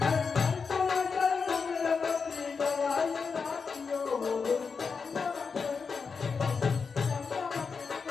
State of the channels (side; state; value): right; quieter; 5.3 dB